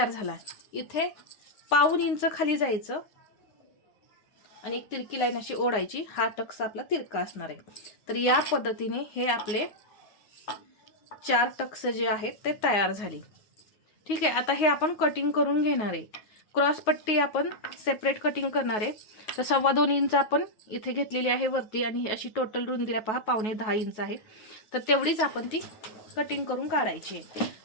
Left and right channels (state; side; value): late; right; 9.5 ms